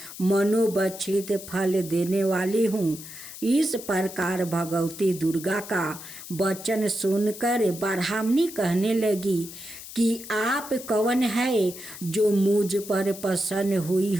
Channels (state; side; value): noise; left; hiss, 13 dB below the sound